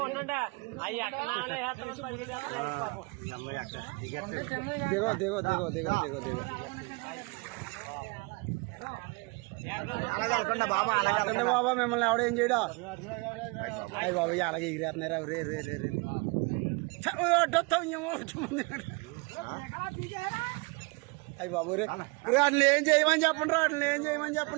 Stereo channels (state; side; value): quieter; left; 28.5 dB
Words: అయ్యి అక్కడ దిగో దిగో దిగో దిగో దిగో దిగో అలాగే బాబా అలాగే బాబా మిమ్మల్ని ఎవడేం చేయడా అయ్యి బాబా అలాగే ఎగిరేస్తున్నారా రే రే రే రే అయ్యి బాబు రే వాటిని ఏం చేయమని చెప్పండి రా వాటిని ఏం చేయమని